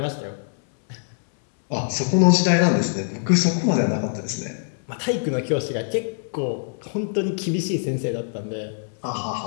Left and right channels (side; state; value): right; silent; 63 dB below the other